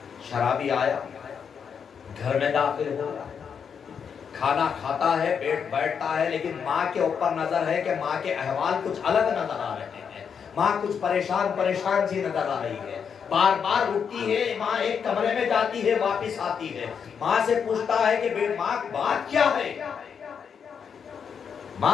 شرابی آیا، گھر میں داخل ہو رہا ہے، کھانا کھاتا ہے، بیٹھتا ہے، لیکن ماں کے اوپر نظر ہے کہ ماں کے احوال کچھ الگ نظر آ رہے ہیں، ماں کچھ پریشان سی نظر آ رہی ہے، بار بار اٹھتی ہے، ماں ایک کمرے میں جاتی ہے، واپس آتی ہے، ماں سے پوچھتا ہے کہ ماں بات کیا ہے؟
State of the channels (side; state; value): right; quieter; 6.9 dB